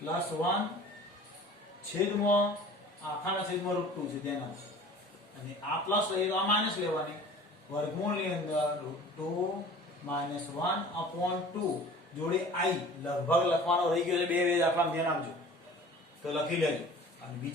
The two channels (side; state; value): both; normal; correlation 0.44